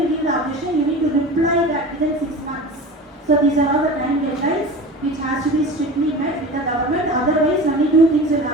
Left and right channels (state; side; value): normal; both; correlation 0.34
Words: give the objection, you need to reply that within 6 months. So these are all the time deadlines which has to be strictly met with the government, otherwise only 2 things will